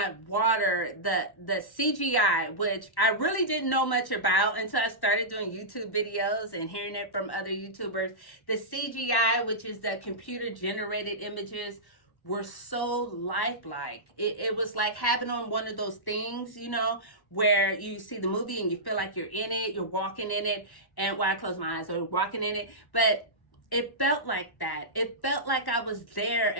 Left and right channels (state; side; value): late; right; 1.1 ms